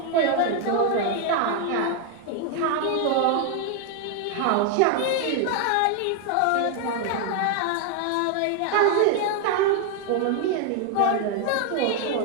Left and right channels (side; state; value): both; different; correlation 0.01